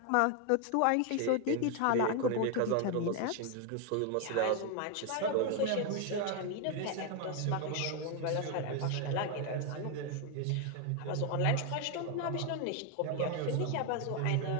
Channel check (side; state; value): both; different; correlation 0.01